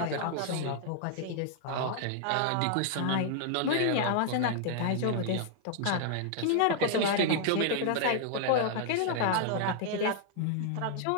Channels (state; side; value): different; both; correlation -0.01